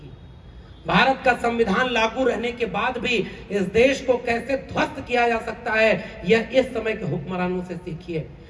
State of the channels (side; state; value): both; identical; correlation 1.00